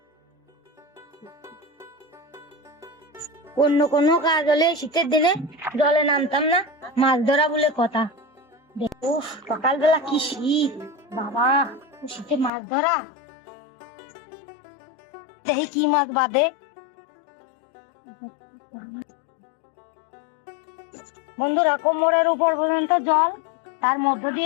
অন্য কোনো কাজ হলে শীতের দিনে জলে নামতাম না, মাছ ধরা বলে কথা। দেখো সকালবেলা কি শীত, বাবা শীতে মাছ ধরা। দেখি কি মাছ বাঁধে। বন্ধুরা, কোমরের উপর পর্যন্ত জল, তার মধ্য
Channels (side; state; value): right; drops out; at 12.5 s